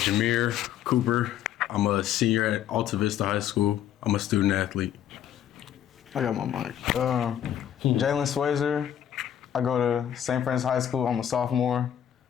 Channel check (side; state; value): right; quieter; 10.3 dB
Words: Cooper. I'm a senior at Alta Vista High School. I'm a student athlete. I got my mic. Jalen Swayzer. I go to St. Francis High School. I'm a sophomore,